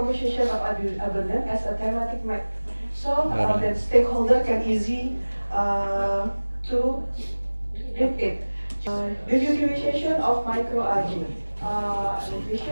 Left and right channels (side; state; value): both; inverted; correlation -1.00